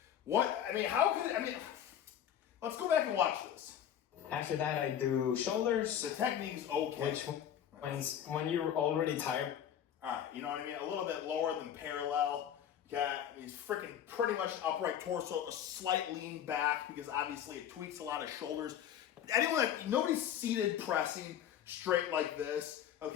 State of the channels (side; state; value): right; quieter; 9.8 dB